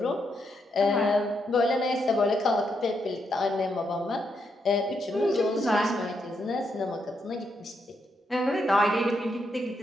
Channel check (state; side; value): normal; both; correlation 0.80